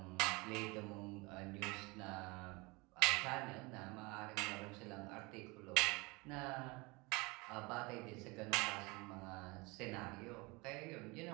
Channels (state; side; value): quieter; left; 25.7 dB